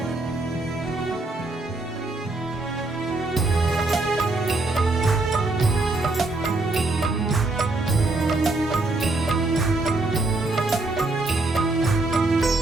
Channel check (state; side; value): quieter; left; 3.1 dB